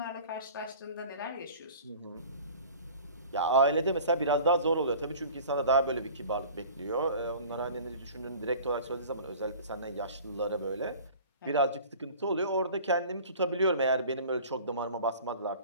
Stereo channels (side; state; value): both; inverted; correlation -0.43